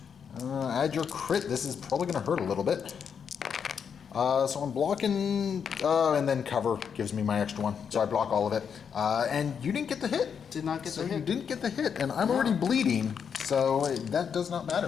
Add your crit. This is probably going to hurt a little bit. So I'm blocking, and then cover gives me my extra 1. So I block all of it. And you didn't get the hit. Did not get the You hit. didn't get the hit, and I'm already bleeding, so that does not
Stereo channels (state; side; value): quieter; right; 7.1 dB